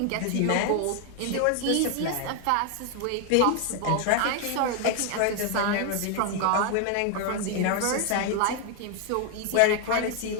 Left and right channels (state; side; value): different; both; correlation 0.00